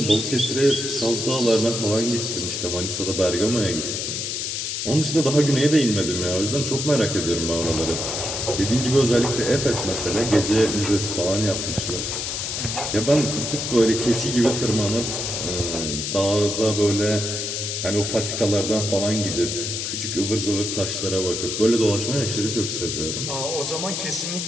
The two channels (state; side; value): noise; left; hiss, 3 dB below the sound